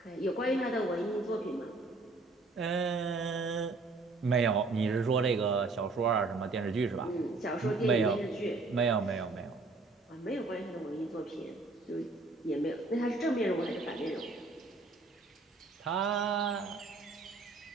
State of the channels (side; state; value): left; quieter; 3.5 dB